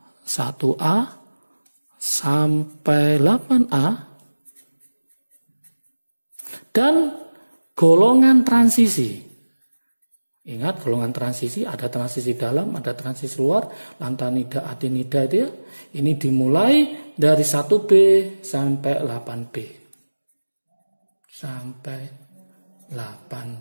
1A sampai 8A, dan golongan transisi. Ingat, golongan transisi ada transisi dalam, ada transisi luar, lantanida, adenida itu ya. Ini dimulai dari 1B sampai 8B.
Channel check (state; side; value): inverted; both; correlation -1.00